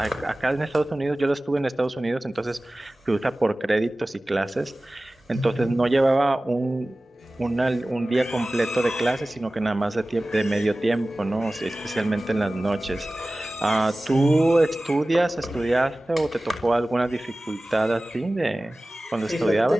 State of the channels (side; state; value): both; normal; correlation 0.97